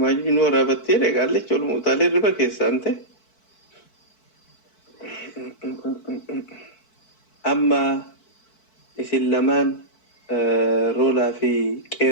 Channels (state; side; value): late; right; 4.6 ms